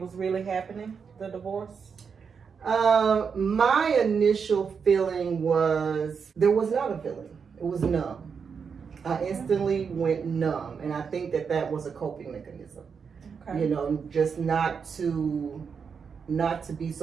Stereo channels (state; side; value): quieter; left; 6.1 dB